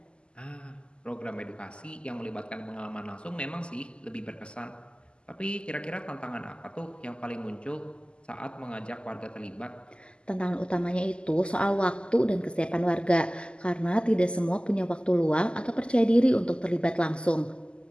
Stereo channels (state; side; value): late; right; 0.050 ms